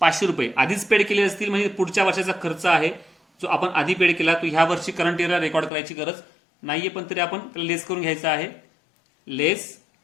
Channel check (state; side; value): drops out; right; at 5.7 s